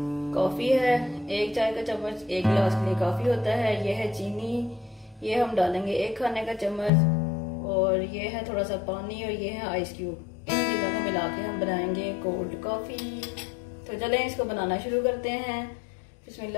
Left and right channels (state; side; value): drops out; right; at 6.9 s